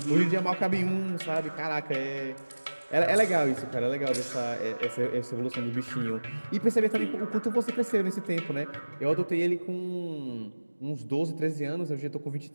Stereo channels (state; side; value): inverted; both; correlation -1.00